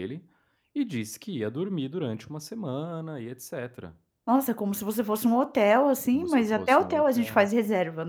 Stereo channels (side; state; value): both; identical; correlation 1.00